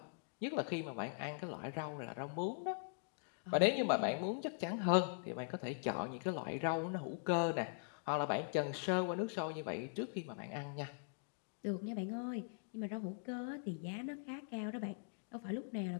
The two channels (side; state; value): right; silent; digital silence